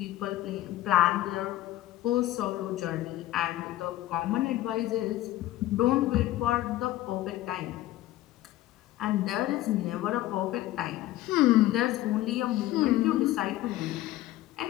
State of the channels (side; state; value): right; quieter; 15.4 dB